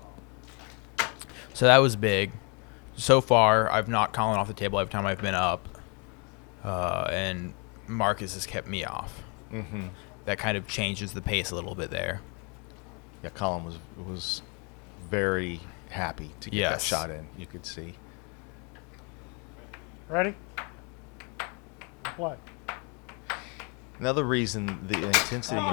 So that was big. So far, I've knocked Colin off the table every time I've been up. And Marcus has kept me off. Mm-hmm. That kind of changes the pace a little bit there. Yeah, Colin was very happy to get that Yes. shot in. You could see. Ready? And play. Another reason the intensity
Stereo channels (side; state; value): right; quieter; 34.0 dB